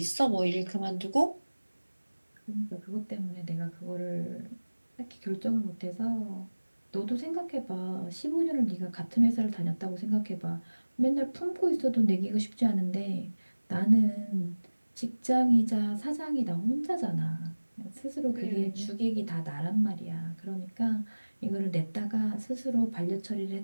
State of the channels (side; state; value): both; inverted; correlation -1.00